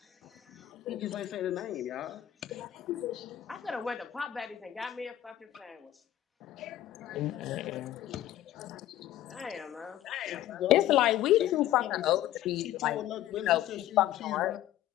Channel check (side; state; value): right; quieter; 13.2 dB